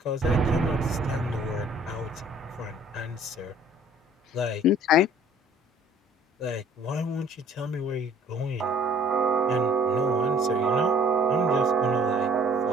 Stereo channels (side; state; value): both; normal; correlation 0.55